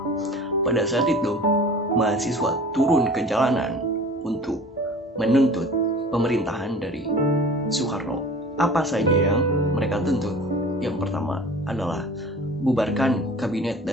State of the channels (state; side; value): normal; both; correlation 0.43